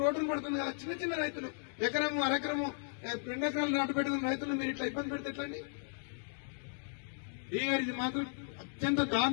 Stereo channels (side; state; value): right; silent; digital silence